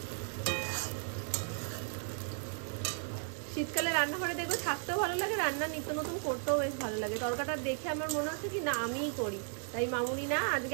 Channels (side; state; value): left; silent; 54 dB below the other